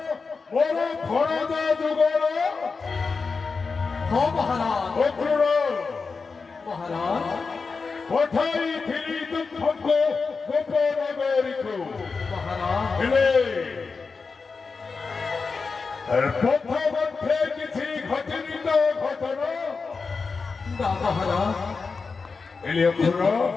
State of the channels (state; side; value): quieter; right; 4.6 dB